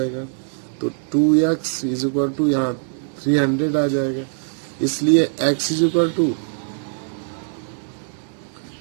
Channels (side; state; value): left; silent; digital silence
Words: तो 2x इज इक्वल टू यहाँ 300 आ जाएगा, इसलिए x इज इक्वल टू